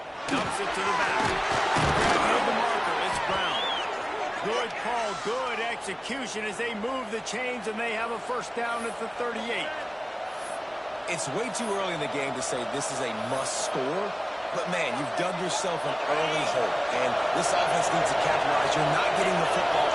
Dumps it to the back. Grabbing the marker. It's Brown. Good call. Good execution as they move the chains and they have a first down at the 38. It's way too early in the game to say this is a must score. But, man, you've dug yourself an early hole, and this offense needs to capitalize. You're not getting the football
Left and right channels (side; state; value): both; identical; correlation 1.00